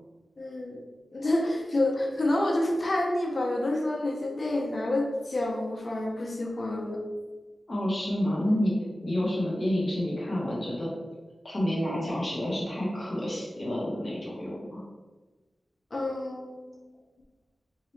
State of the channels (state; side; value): normal; both; correlation 0.95